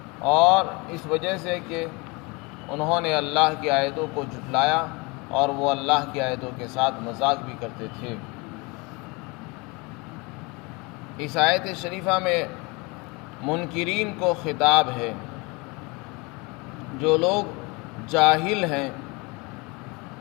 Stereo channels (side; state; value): right; quieter; 27.2 dB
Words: اور اس وجہ سے کہ انہوں نے اللہ کی آیتوں کو جھٹلایا اور وہ اللہ کی آیتوں کے ساتھ مذاق بھی کرتے تھے۔ اس آیت شریفہ میں منکرین کو خطاب ہے۔ جو لوگ جاہل ہیں